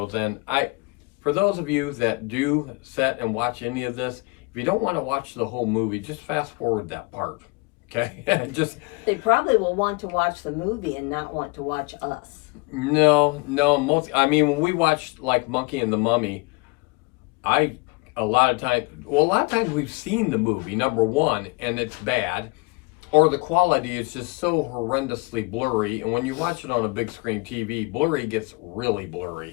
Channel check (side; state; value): right; quieter; 27.8 dB